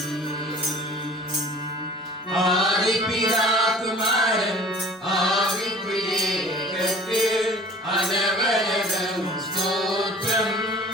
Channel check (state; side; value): normal; both; correlation 0.46